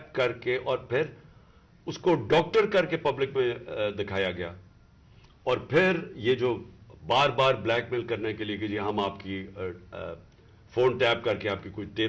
کر کے اور پھر اس کو ڈاکٹر کر کے پبلک میں دکھایا گیا. اور پھر یہ جو بار بار بلیک میل کرنے کے لیے کہ جی ہم آپ کی فون ٹیپ کر کے آپ کی کوئی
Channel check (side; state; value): both; identical; correlation 1.00